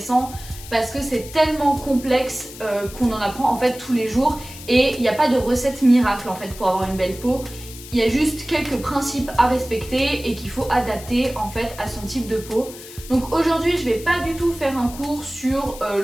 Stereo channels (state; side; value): noise; left; hiss, 15 dB below the sound